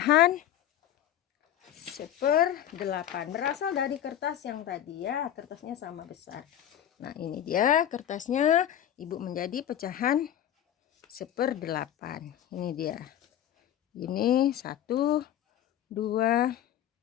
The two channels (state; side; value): quieter; right; 11.0 dB